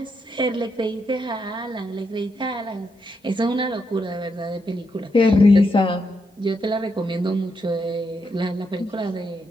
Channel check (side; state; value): both; normal; correlation 0.81